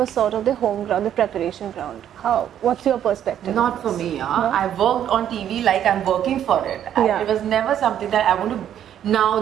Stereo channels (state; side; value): quieter; left; 10.2 dB